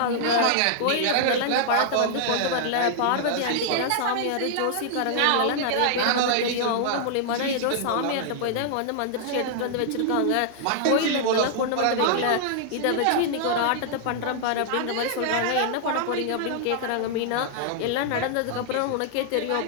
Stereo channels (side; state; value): both; different; correlation -0.01